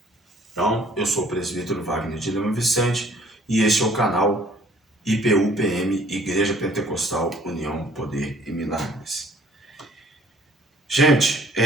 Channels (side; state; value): both; normal; correlation 0.58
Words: Então, eu sou o presbítero Wagner de Lima Vicente e este é o canal IPU-PM, Igreja Pentecostal União, Poder e Milagres. Gente,